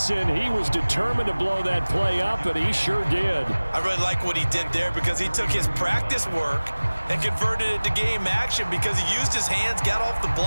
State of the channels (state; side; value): inverted; both; correlation -1.00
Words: He was determined to blow that play up, and he sure did. I really like what he did there because he took his practice work and converted it to game action because he used his hands, got off the